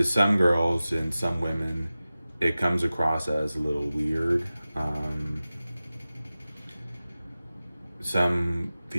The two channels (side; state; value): both; inverted; correlation -0.96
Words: some girls and some women, it comes across as a little weird. Some